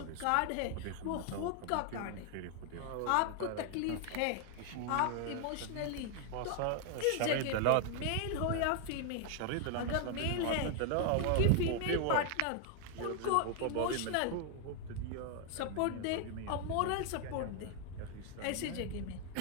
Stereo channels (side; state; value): both; different; correlation 0.00